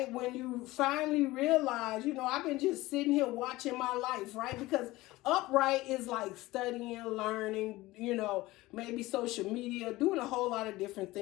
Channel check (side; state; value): right; quieter; 18.9 dB